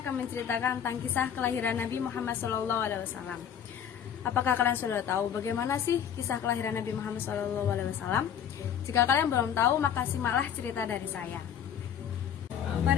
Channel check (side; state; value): right; quieter; 8.8 dB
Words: menceritakan tentang kisah kelahiran Nabi Muhammad SAW. Apakah kalian sudah tahu bagaimana sih kisah kelahiran Nabi Muhammad SAW? Jika kalian belum tahu, maka simaklah cerita dari saya.